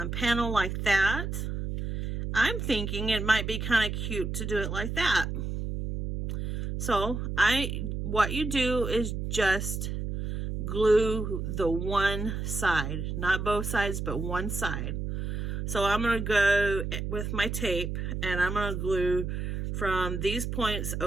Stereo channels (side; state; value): right; noise; hum, 3 dB below the sound